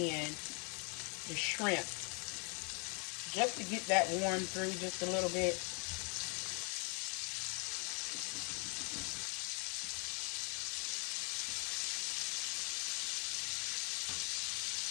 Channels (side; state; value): right; quieter; 35.1 dB